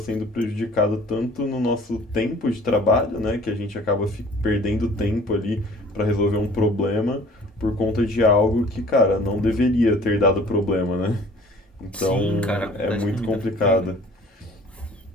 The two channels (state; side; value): normal; both; correlation 0.50